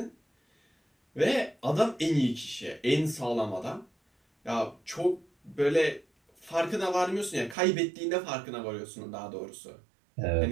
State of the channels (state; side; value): drops out; left; at 7.6 s